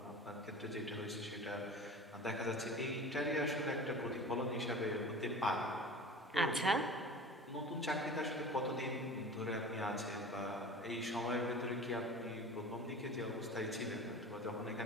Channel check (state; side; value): normal; both; correlation 0.37